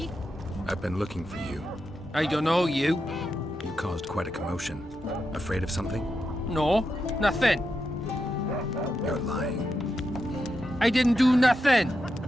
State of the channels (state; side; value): normal; both; correlation 0.86